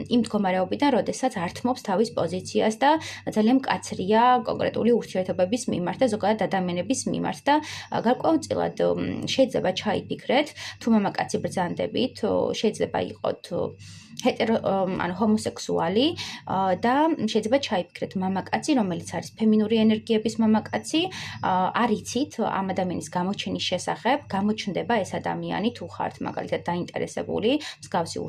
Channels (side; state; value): both; identical; correlation 1.00